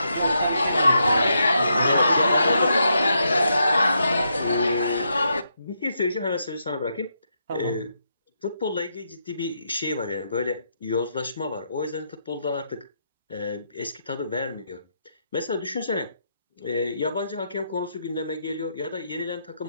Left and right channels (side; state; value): both; inverted; correlation -0.80